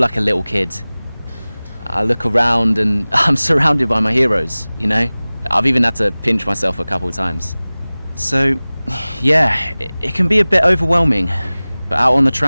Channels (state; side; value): inverted; both; correlation -0.99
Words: a little kid. I look around and I'm surrounded by my heroes, you know? I've even had to pinch myself a couple of times. So, yeah, it can be a bit overwhelming. But out on the